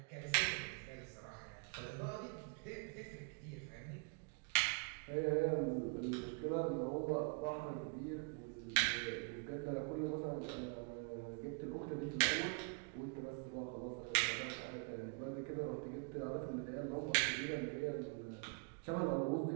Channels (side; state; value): left; quieter; 37.2 dB